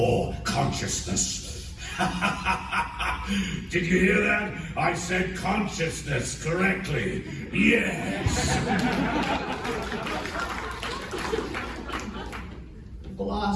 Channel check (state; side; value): identical; both; correlation 1.00